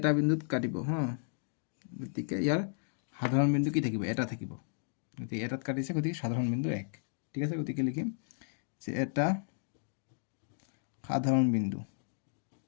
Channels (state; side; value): silent; right; digital silence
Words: বিন্দুত কাটিব হা গতিকে ইয়াৰ সাধাৰণ বিন্দু কি থাকিব এটা থাকিব গতিকে এটাত কাটিছে গতিকে সাধাৰণ বিন্দু 1 ঠিক আছে গতিকে লিখিম যে এটা সাধাৰণ